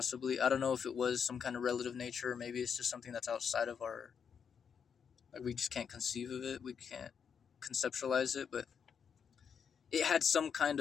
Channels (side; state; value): right; quieter; 7.0 dB